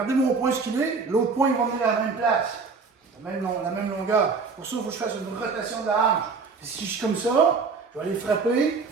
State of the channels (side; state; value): left; quieter; 4.8 dB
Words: mon poing ce qu'il est, l'autre poing il va venir à la même place, la même longueur. Pour ça, il faut que je fasse une rotation de la hanche. Et si je suis comme ça, je vais aller frapper,